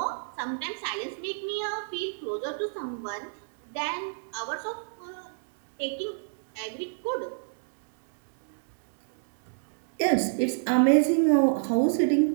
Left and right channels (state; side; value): silent; left; digital silence